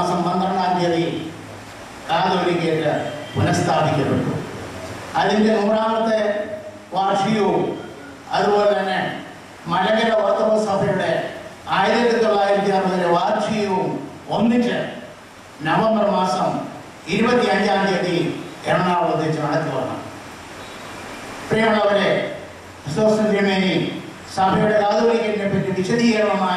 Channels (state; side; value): identical; both; correlation 1.00